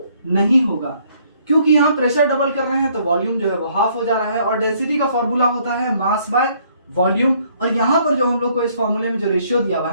नहीं होगा क्योंकि यहाँ प्रेशर डबल कर रहे हैं तो वॉल्यूम जो है वो हाफ हो जा रहा है। और डेंसिटी का फॉर्मूला होता है मास बाय वॉल्यूम। और यहाँ पर जो हम लोग को इस फॉर्मूले में जो रेशियो दिया हुआ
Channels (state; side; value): inverted; both; correlation -0.65